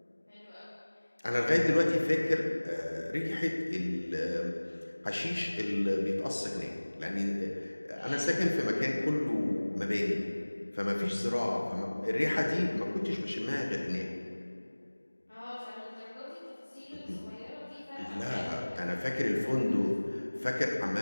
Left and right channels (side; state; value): both; inverted; correlation -1.00